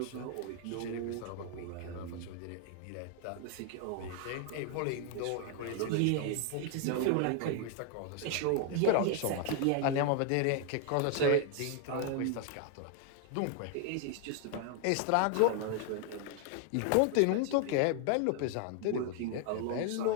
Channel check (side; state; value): both; different; correlation 0.00